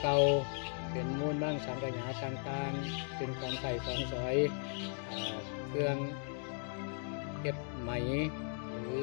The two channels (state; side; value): silent; right; 53 dB below the other